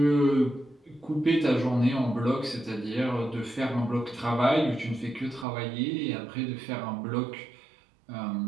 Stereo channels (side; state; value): left; drops out; at 5.5 s